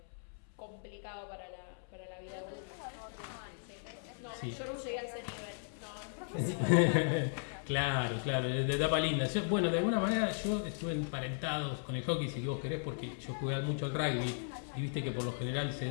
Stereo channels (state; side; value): silent; right; 53 dB below the other